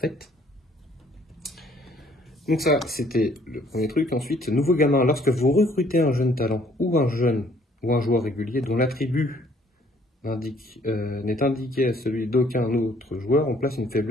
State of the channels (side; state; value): both; normal; correlation 0.62